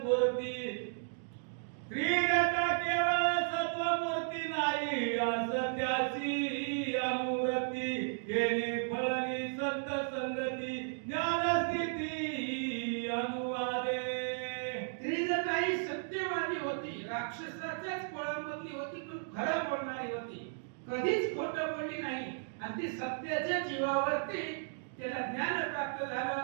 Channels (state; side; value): silent; left; digital silence